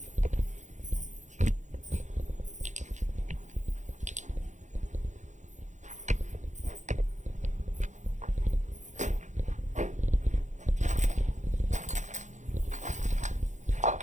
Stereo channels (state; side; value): late; left; 0.35 ms